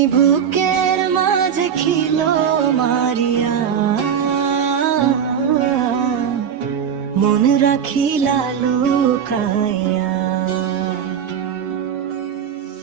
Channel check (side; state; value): left; quieter; 8.1 dB